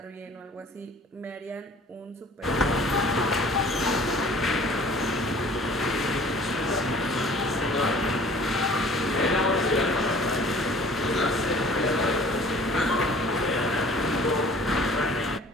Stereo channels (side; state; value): both; normal; correlation 0.49